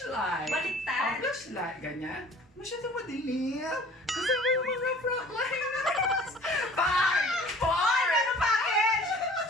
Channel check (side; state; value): both; normal; correlation 0.49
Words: Baliktad. Flashlight. Ganyan. Masyadong madilim. Kasi may mga frontliners. 5, 4. Meron package!